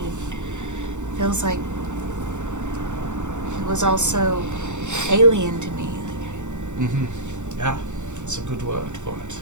feels like it was also alien to me. Mm-hmm. Yeah, that's a good word for it.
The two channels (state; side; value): late; left; 0.84 ms